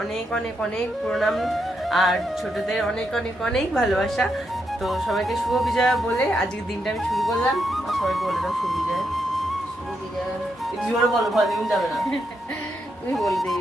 অনেক অনেক অনেক প্রণাম, আর ছোটদের অনেক অনেক অনেক ভালোবাসা। তো সবাইকে শুভ বিজয়া বলে আজকের দিনটা আমি শুরু করলাম। সবাইকে বলে দাও শুভ বিজয়া। শুভ বিজয়া। জোরে বলো, ভলিউম যাবে না। তুমি বলে দিই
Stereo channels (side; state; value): both; normal; correlation 0.81